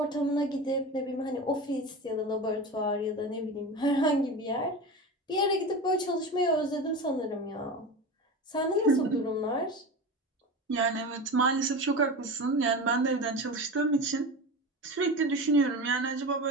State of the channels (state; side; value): normal; both; correlation 0.27